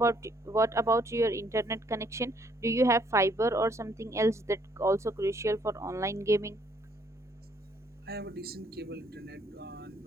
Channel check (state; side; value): normal; both; correlation 0.66